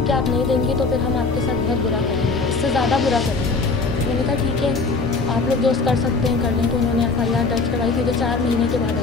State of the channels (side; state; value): right; quieter; 4.1 dB